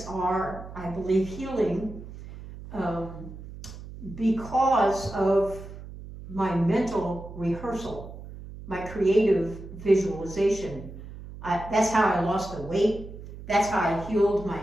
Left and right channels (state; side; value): noise; right; hum, 13 dB below the sound